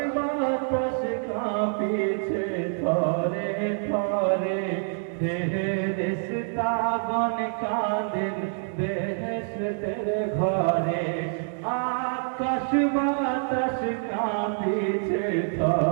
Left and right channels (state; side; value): silent; left; digital silence